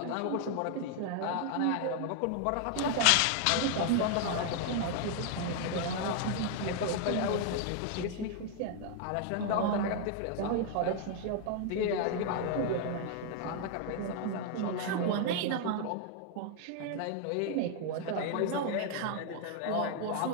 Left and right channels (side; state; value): both; different; correlation 0.00